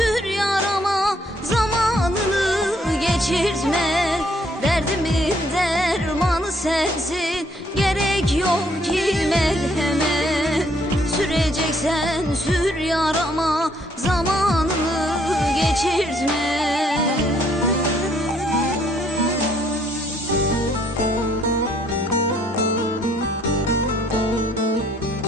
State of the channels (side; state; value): both; normal; correlation 0.67